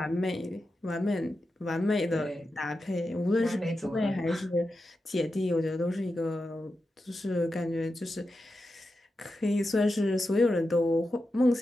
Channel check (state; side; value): normal; both; correlation 0.90